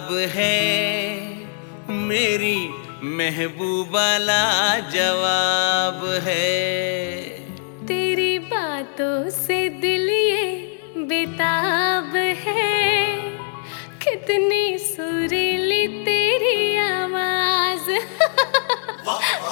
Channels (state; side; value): silent; right; digital silence